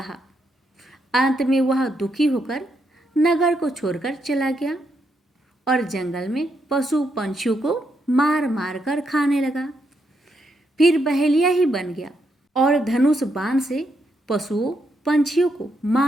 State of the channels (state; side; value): normal; both; correlation 0.79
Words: अंत में वह दुखी होकर नगर को छोड़कर चला गया और जंगल में पशु पंछियों को मार मार कर खाने लगा। फिर बहेलिया ही बन गया और धनुष बाण से पशुओं पंछियों को